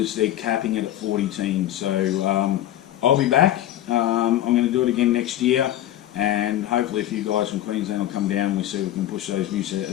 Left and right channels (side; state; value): right; quieter; 13.1 dB